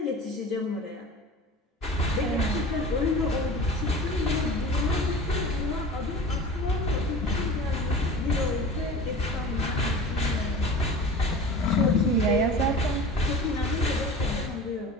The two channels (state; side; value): normal; both; correlation 0.37